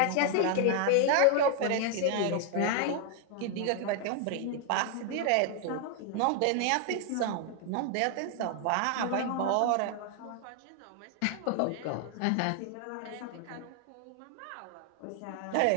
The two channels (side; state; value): both; different; correlation 0.00